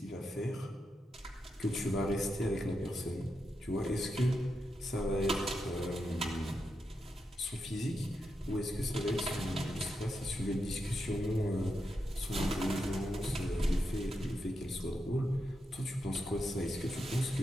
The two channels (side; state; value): both; normal; correlation 0.86